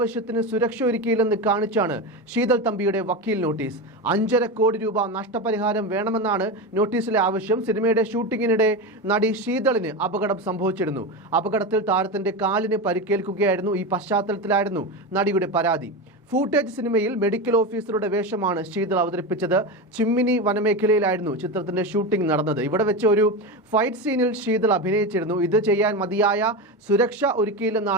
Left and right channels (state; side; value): normal; both; correlation 0.19